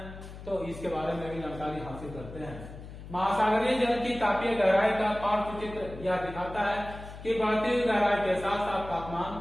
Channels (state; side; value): noise; left; hum, 13 dB below the sound